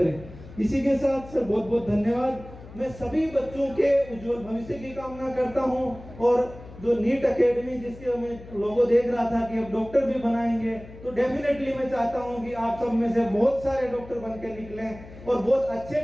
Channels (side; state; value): left; noise; hum, 17 dB below the sound